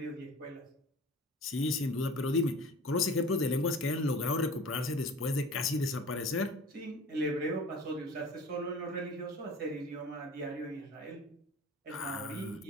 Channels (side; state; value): both; normal; correlation 0.42